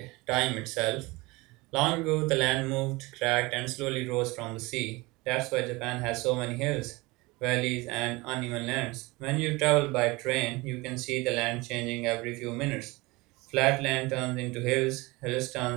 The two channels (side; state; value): left; quieter; 23.1 dB